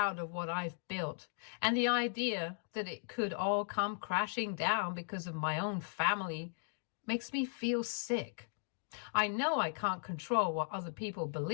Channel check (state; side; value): silent; right; digital silence